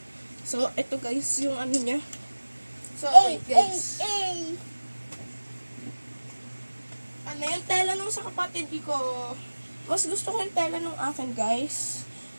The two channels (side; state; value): both; inverted; correlation -1.00